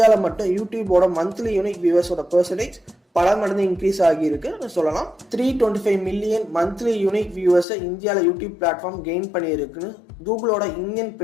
மட்டும் யூடியூபோட மந்த்லி யூனிக் வியூவர்ஸோட பெர்சன்டேஜ் பல மடங்கு இன்க்ரீஸ் ஆகியிருக்கு சொல்லலாம். 325 மில்லியன் மந்த்லி யூனிக் வியூவர்ஸை இந்தியாவில் யூடியூப் பிளாட்ஃபார்ம் கெயின் பண்ணியிருக்குன்னு கூகுளோட இந்தியன்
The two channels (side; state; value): right; drops out; at 7.7 s